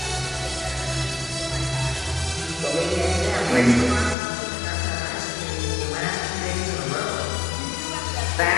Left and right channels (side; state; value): right; drops out; at 4.2 s